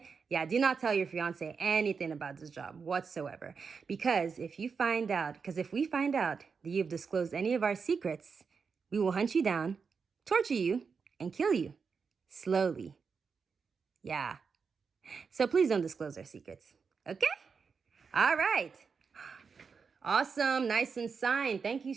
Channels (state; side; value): quieter; left; 5.5 dB